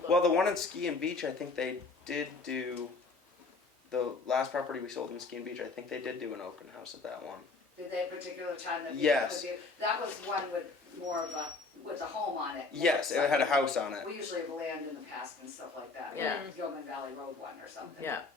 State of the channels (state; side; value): quieter; right; 3.9 dB